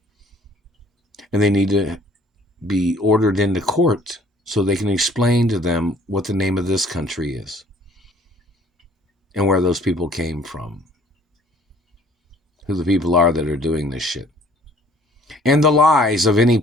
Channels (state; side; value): normal; both; correlation 0.56